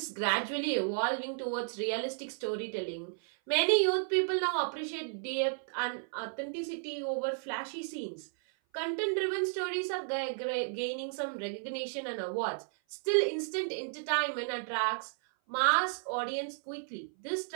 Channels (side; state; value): left; silent; 56 dB below the other